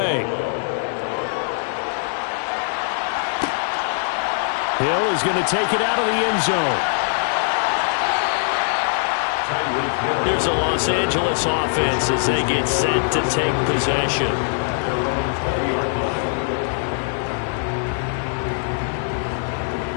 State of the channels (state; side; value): silent; right; digital silence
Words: Hill is going to take it out of the end zone. Here's a Los Angeles offense as they get set to take possession.